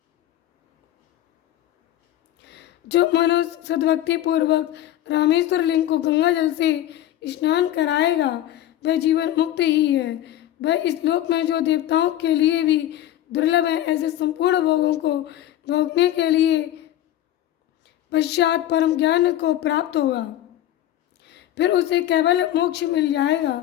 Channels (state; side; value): quieter; right; 12.8 dB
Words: जो मनो सद्भक्ति पूर्वक रामेश्वर लिंग को गंगा जल से स्नान कराएगा वह जीवन मुक्त ही है। वह इस लोक में जो देवताओं के लिए भी दुर्लभ है, ऐसे संपूर्ण भोगों को भोगने के लिए पश्चात परम ज्ञान को प्राप्त होगा। फिर उसे केवल मोक्ष मिल